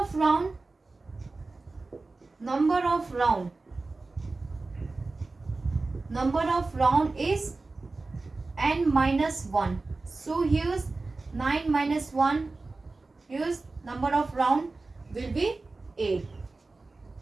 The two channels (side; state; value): left; quieter; 3.5 dB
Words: round. Number of round. Number of round is n minus 1. So here's 9 minus 1. Here's number of round will be 8.